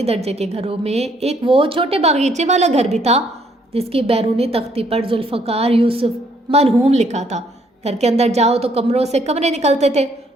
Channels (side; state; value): both; normal; correlation 0.67